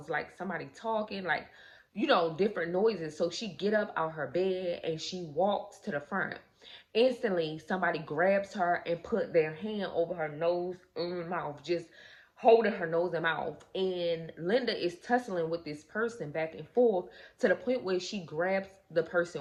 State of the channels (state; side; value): identical; both; correlation 1.00